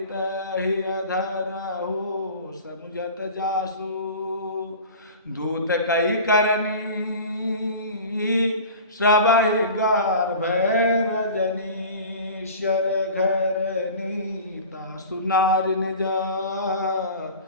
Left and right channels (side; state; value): both; inverted; correlation -0.39